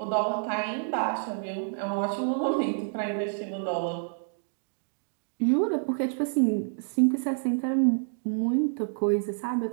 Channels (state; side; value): silent; left; digital silence